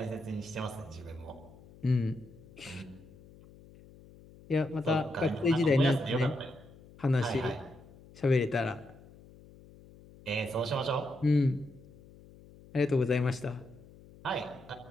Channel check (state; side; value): noise; left; hum, 22 dB below the sound